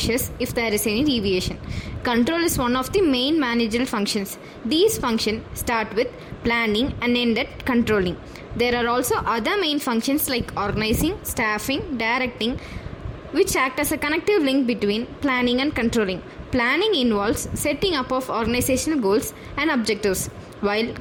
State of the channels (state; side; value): identical; both; correlation 1.00